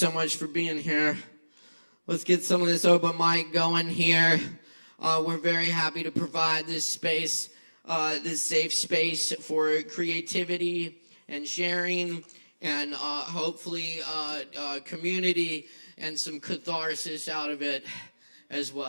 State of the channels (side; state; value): both; inverted; correlation -1.00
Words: much for being here. Let's get some of this open mic going here. We're very happy to provide this space, this safe space for creativity and sharing and hopefully community and some catharsis out of it as